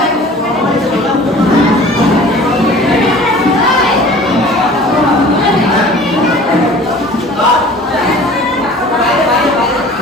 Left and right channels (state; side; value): normal; both; correlation 0.45